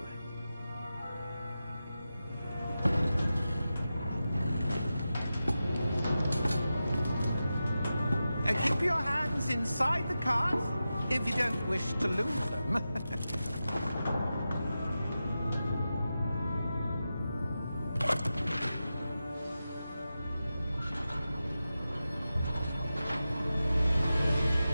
Keep your hands inside the cart if you don't wish to lose them.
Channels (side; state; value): both; inverted; correlation -0.92